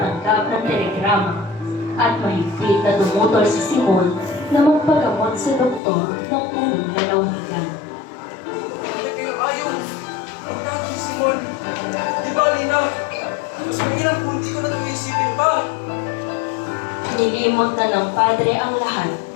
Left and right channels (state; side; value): drops out; right; at 5.8 s